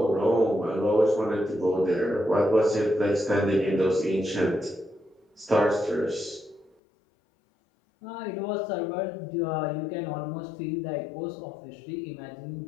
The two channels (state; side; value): drops out; right; at 6.7 s